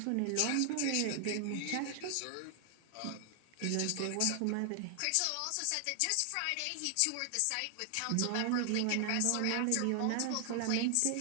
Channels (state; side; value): different; both; correlation 0.00